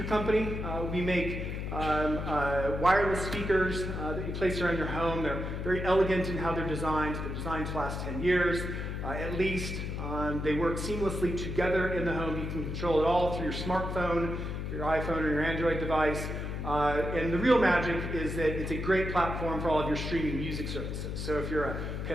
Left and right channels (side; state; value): left; noise; hum, 4 dB below the sound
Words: company. We make wireless speakers that you place around your home. They're very elegant in how they're designed. They're designed to last 10 years, at least. They work seamlessly together in the home. You can control it all through your smartphone, your iPhone, or your Android device. And the real magic is that it's a great platform for all of your streaming music services. So if you're a